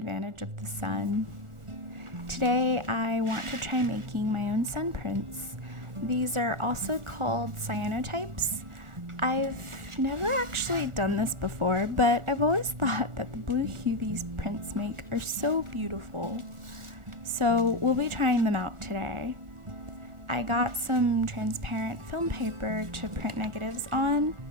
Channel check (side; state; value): left; late; 1.4 ms